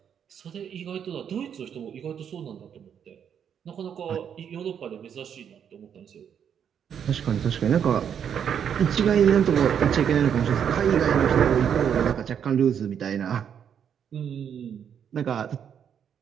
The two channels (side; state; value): left; quieter; 8.3 dB